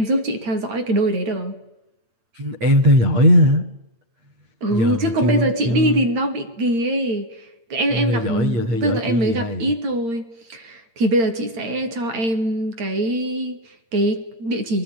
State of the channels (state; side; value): late; left; 8.7 ms